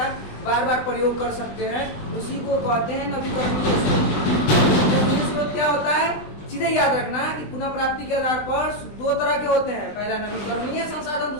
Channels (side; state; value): right; late; 20 ms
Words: बार बार प्रयोग कर सकते हैं, उसी को कहते हैं नवीकरणीय स्रोत। क्या होता है? सीधे याद रखना कि पुनः प्राप्ति के आधार पर दो तरह के होते हैं। पहला नवीकरणीय संसाधन,